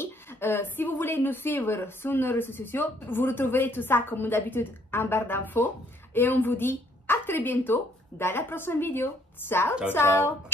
Si vous voulez nous suivre sur nos réseaux sociaux, vous retrouverez tout ça comme d'habitude en barre d'infos. Et on vous dit à très bientôt dans la prochaine vidéo. Ciao, ciao.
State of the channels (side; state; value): both; normal; correlation 0.64